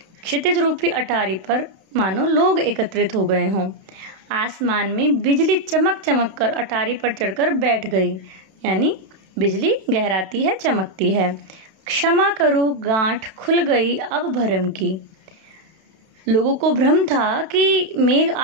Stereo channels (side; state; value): left; late; 32 ms